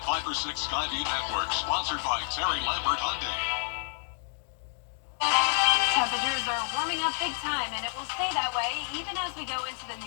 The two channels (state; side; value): silent; right; digital silence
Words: 5 for 6 Skyview Network, sponsored by Terry Lambert Hyundai. Temperatures are warming up big time, and it will stay that way even as we go into the